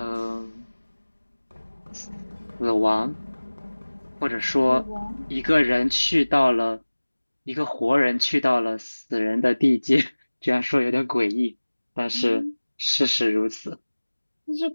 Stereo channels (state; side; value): inverted; both; correlation -1.00